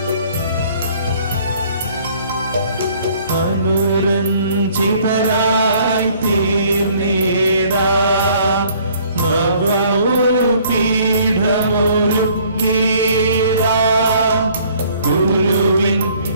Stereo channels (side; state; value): both; inverted; correlation -0.59